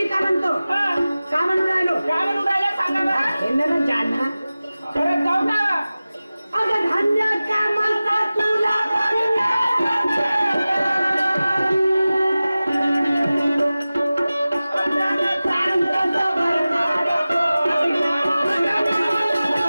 का म्हणतो का म्हणून राहिलो काय म्हणून राहिला सांगा बरं. हे ना जाना परत जाऊ का. अगं धान्य कामाचा तुला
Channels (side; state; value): both; inverted; correlation -0.97